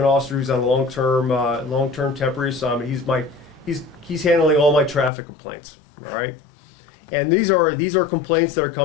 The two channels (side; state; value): right; drops out; at 5.1 s